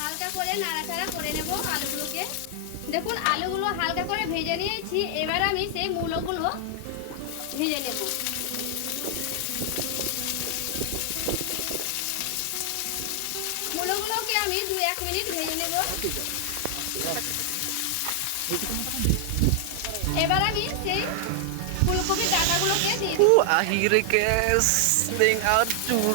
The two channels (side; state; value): both; different; correlation 0.00